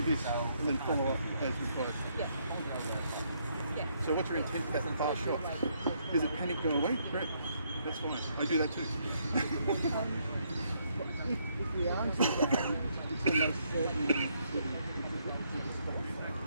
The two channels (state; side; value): inverted; both; correlation -0.73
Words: this and then follow up as required. So what's your intent for that fast shot? Is it panic go away? Great. That's fine. I do that too. If we are into that, it's almost certainly